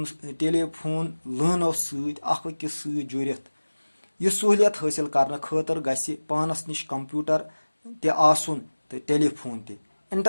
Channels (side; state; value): both; inverted; correlation -1.00